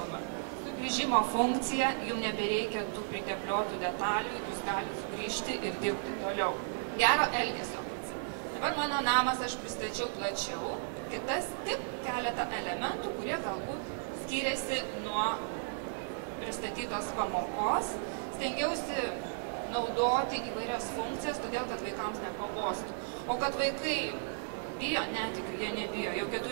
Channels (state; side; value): silent; left; digital silence